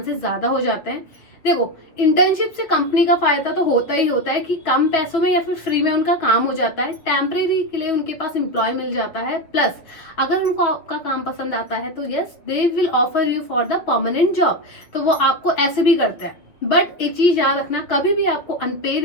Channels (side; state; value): right; late; 6.5 ms